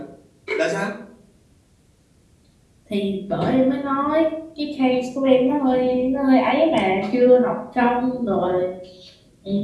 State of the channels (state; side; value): identical; both; correlation 1.00